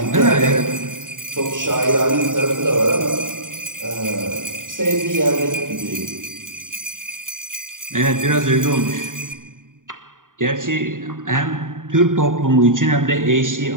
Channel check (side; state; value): left; late; 0.88 ms